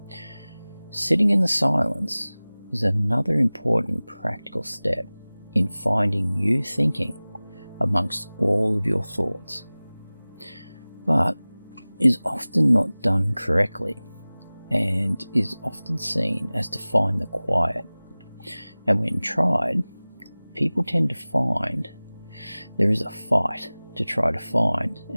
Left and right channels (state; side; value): inverted; both; correlation -0.99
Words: Sitting in the silence is another important practical step in finding you thinking amongst all of your thoughts, but is often not done correctly and is often seen as to find the quiet. And when tried, people tend to find there is a fight to try to find